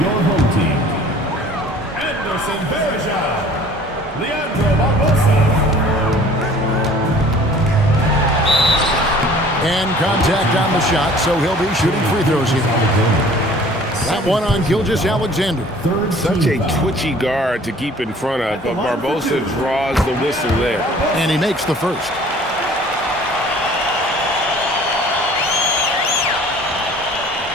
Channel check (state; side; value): normal; both; correlation 0.50